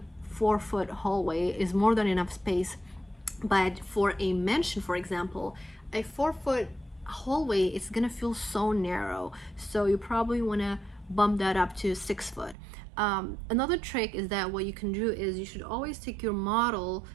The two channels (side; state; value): left; drops out; at 12.6 s